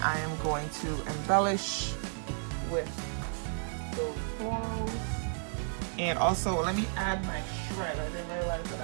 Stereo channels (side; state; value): left; silent; 56 dB below the other